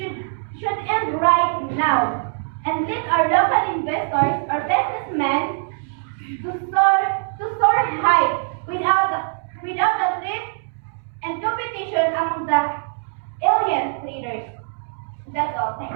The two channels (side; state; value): left; silent; 64 dB below the other